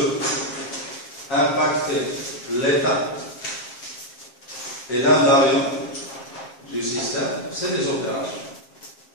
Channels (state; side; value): late; right; 7.5 ms